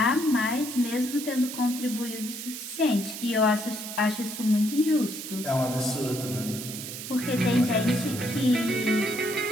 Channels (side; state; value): right; noise; hiss, 8 dB below the sound